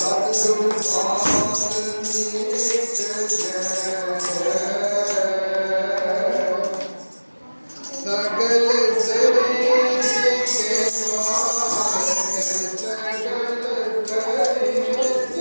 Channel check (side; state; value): both; inverted; correlation -1.00